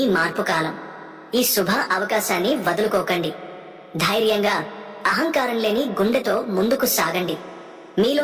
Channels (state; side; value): identical; both; correlation 1.00